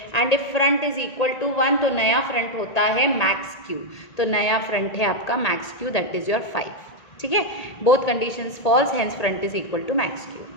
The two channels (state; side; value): late; right; 1.8 ms